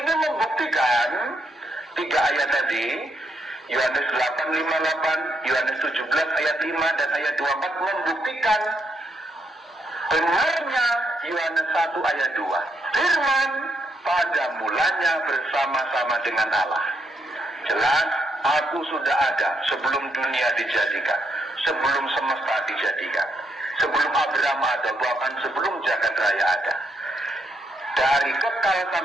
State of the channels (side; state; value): both; normal; correlation 0.78